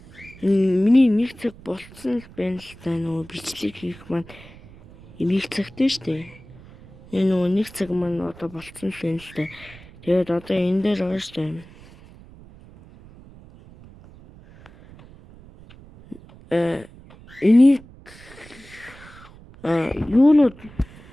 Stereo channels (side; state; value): right; noise; rumble, 21 dB below the sound